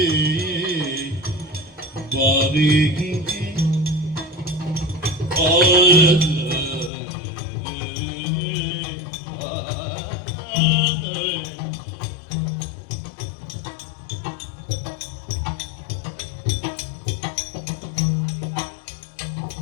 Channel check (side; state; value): right; drops out; at 6.9 s